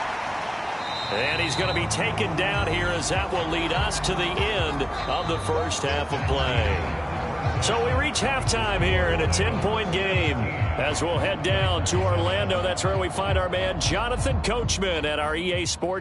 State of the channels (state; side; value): identical; both; correlation 1.00